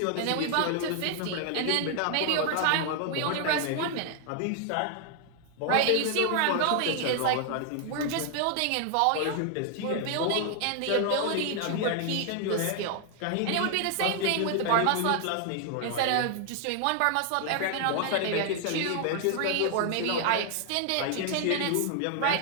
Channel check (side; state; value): both; different; correlation 0.00